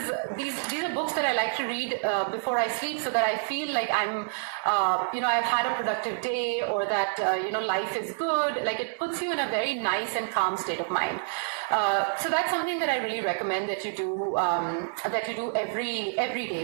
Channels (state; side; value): silent; left; digital silence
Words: books that I like to read before I sleep, so that I feel like I'm, I've had a productive day, or that life is good. Like, it puts you in a very nice and calm state of mind. So that's something that I really recommend that you do every